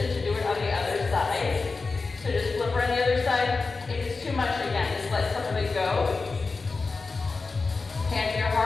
to do it on the other side. So just flip around the other side. If it's too much, again, just let some of it go. Hand to your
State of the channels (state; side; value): quieter; right; 4.1 dB